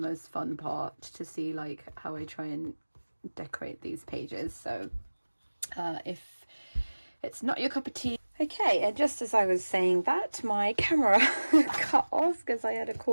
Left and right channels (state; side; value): inverted; both; correlation -1.00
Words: fun part, to see like how I try and decorate these pages. So if it's not your cup of tea. Okay, and just as I was saying that, my camera cut off because I had a